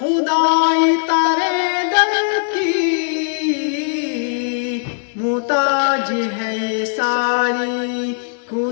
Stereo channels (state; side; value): silent; right; digital silence